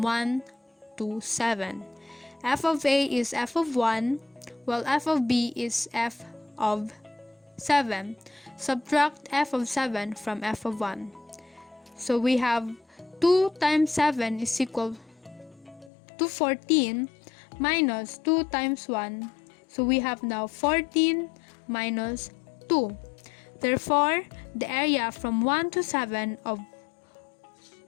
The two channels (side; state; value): right; drops out; at 15.9 s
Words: 1 to 7. F of A is f of 1, while f of B is f of 7. Subtract f of 7 from f of 1. So we have 2 times 7 is equal to 14 minus 2 times 1. So we have now 14 minus 2. Therefore, the area from 1 to 7 of